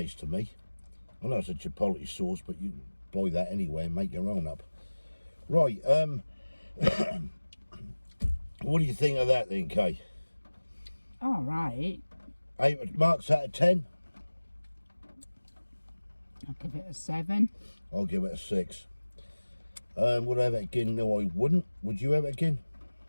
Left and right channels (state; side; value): inverted; both; correlation -1.00